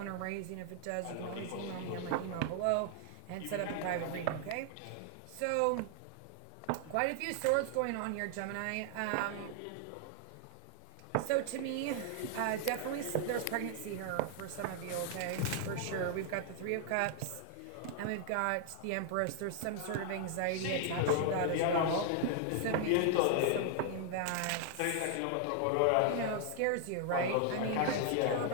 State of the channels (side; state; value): both; different; correlation 0.00